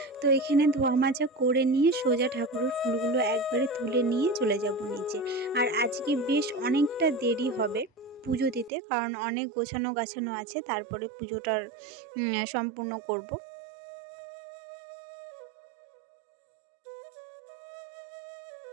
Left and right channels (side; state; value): left; drops out; at 8.7 s